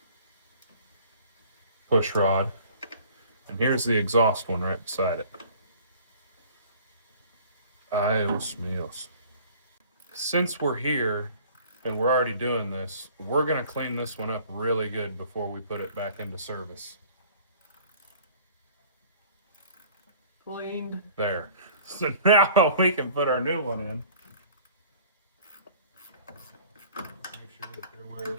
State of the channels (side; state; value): both; inverted; correlation -0.50